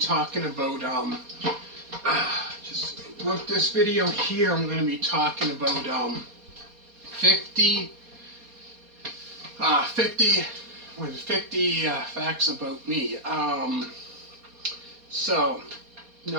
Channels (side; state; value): left; late; 4.2 ms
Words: about, with this video here, I'm going to be talking about, 50 facts about me. So,